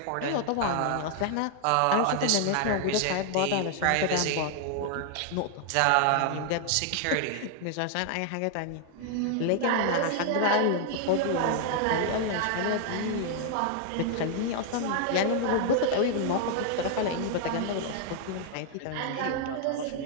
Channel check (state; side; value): different; both; correlation 0.00